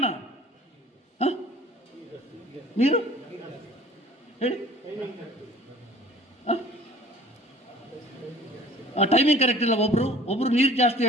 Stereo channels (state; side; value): normal; both; correlation 0.47